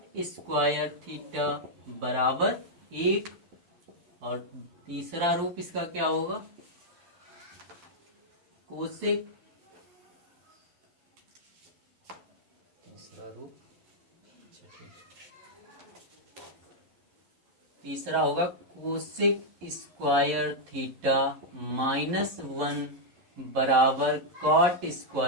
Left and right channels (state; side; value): late; left; 11 ms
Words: square theta बराबर 1, और तीसरा रूप इसका क्या होगा, कोसेक, तीसरा रूप, तीसरा होगा कोसेक स्क्वायर थीटा -1 बराबर कॉट